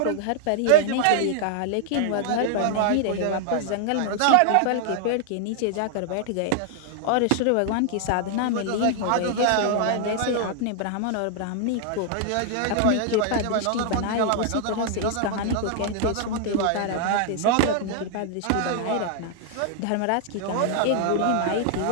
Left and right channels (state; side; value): different; both; correlation 0.00